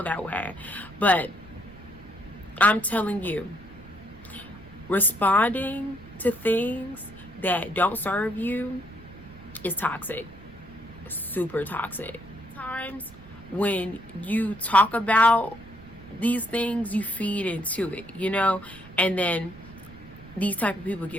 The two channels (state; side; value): noise; right; rumble, 21 dB below the sound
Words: that way, but I'm telling you, responding to things that don't serve you is toxic. Super toxic. Times when you talk about these things, you feed into it, you know, and then these type of people